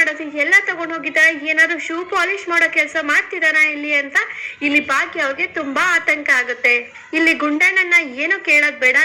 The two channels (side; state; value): both; identical; correlation 1.00